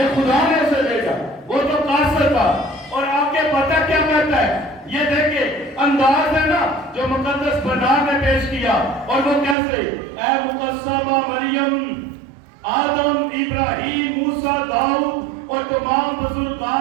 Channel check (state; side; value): drops out; left; at 9.6 s